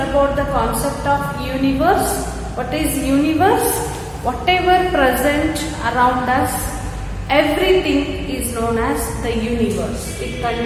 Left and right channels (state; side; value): identical; both; correlation 1.00